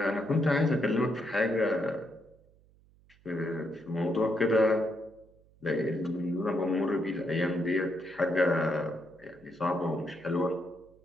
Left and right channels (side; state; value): right; noise; hum, 29 dB below the sound